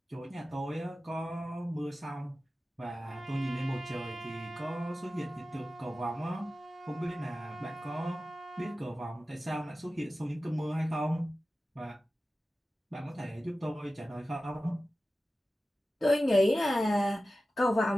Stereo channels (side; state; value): both; normal; correlation 0.95